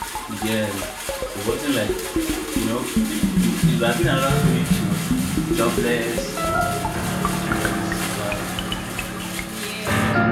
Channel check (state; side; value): identical; both; correlation 1.00